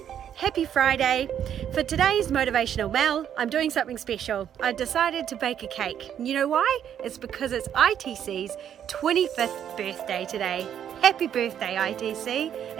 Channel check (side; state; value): left; quieter; 9.5 dB